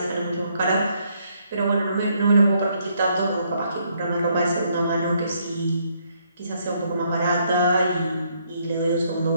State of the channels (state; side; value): inverted; both; correlation -0.71